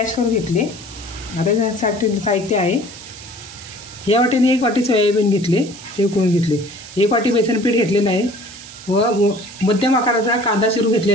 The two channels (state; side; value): noise; right; hiss, 17 dB below the sound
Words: करून घेतले। आता त्यासाठी साहित्य आहे, या वाटीने एक वाटी सोयाबीन घेतले, ते उकडून घेतले। एक वाटी बेसन पीठ घेतलेलं आहे व मध्यम आकाराचा कांदा चिरून